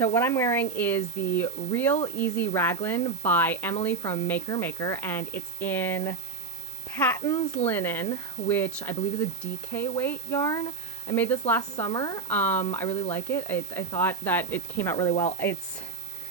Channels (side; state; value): left; quieter; 4.8 dB